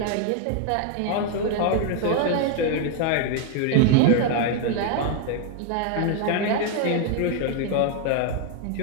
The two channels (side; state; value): both; different; correlation 0.00